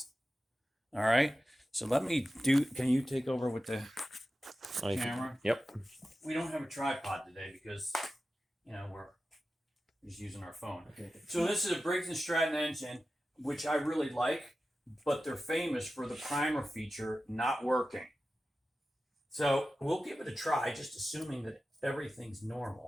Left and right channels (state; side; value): normal; both; correlation 0.94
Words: All right. So can you take over with the camera? Yep. We don't have a tripod today because, we're just using our phone. Okay. So this is a Briggs Stratton engine, which I really like, but they're famous for the primer feature not working. So we'll give it a try, just assuming that everything's